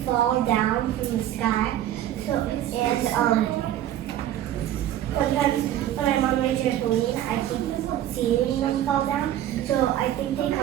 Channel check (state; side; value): quieter; left; 12.2 dB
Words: fall down from the sky. So and sometimes when I'm on my trampoline, I keep seeing them fall down. So I think they